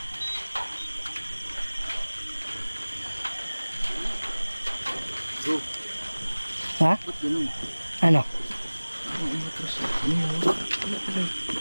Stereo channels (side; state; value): both; inverted; correlation -1.00